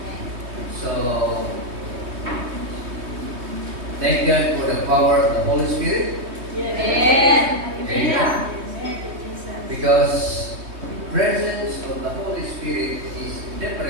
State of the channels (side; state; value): left; late; 3.2 ms